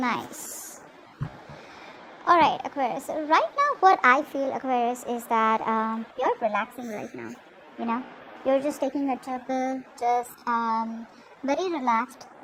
Alright, Aquarius. So right now, what I feel, Aquarius, is that you're relaxing right now. You know, you're just taking a chill, just very relaxed,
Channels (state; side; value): identical; both; correlation 1.00